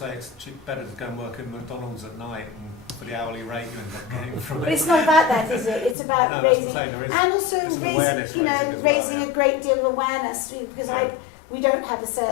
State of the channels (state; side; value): drops out; right; at 6.0 s